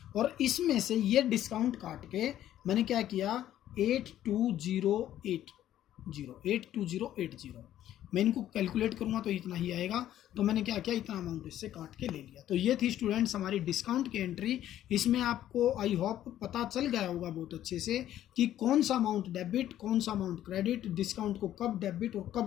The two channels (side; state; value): right; quieter; 12.2 dB